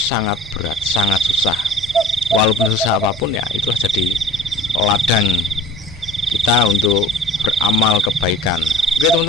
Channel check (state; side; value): normal; both; correlation 0.46